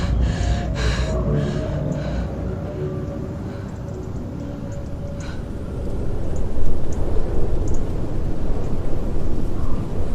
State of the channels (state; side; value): identical; both; correlation 1.00